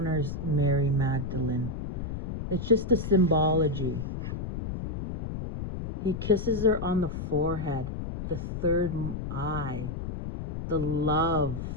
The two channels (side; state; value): left; noise; rumble, 6 dB below the sound